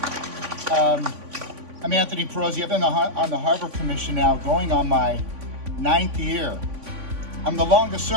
I'm Anthony Pirozzi. I've been on the Harbor Commission now, going on my 9th year. I'm the longest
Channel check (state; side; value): late; left; 3.5 ms